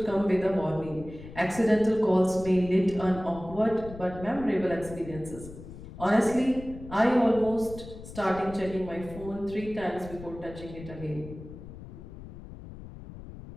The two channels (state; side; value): noise; left; rumble, 14 dB below the sound